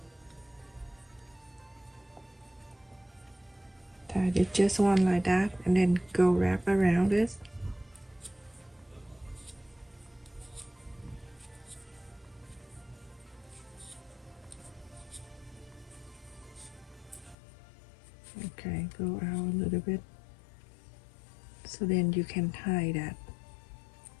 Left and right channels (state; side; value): drops out; right; at 17.4 s